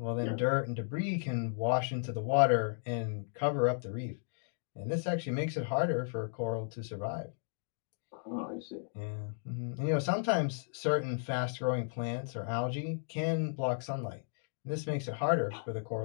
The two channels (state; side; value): silent; right; digital silence